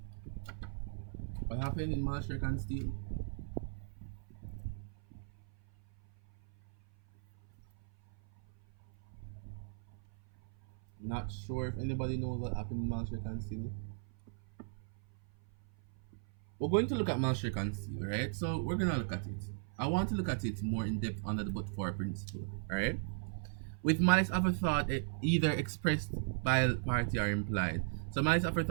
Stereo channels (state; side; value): silent; left; 53 dB below the other